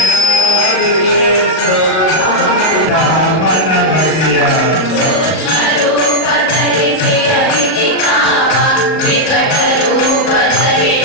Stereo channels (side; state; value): right; late; 38 ms